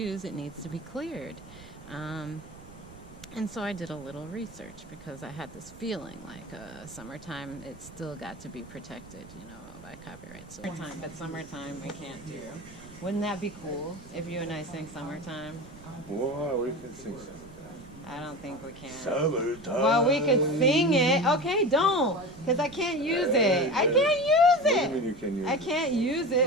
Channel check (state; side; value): noise; right; rumble, 20 dB below the sound